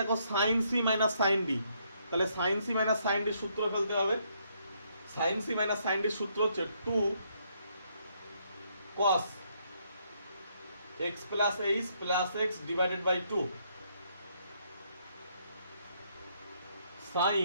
sin c minus sin d, তাহলে sin c minus sin d এর সূত্র ফেলতে হবে। sin c minus sin d এর সূত্র হচ্ছে 2 cos x plus h plus x divided by 2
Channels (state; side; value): inverted; both; correlation -0.72